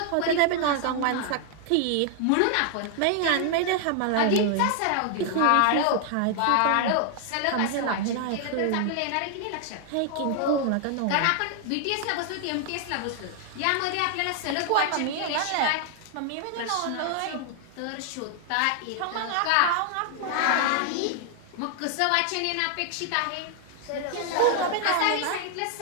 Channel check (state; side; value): different; both; correlation 0.00